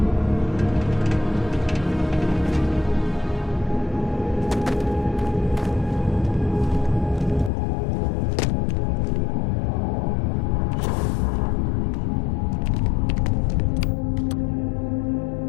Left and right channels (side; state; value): right; drops out; at 7.5 s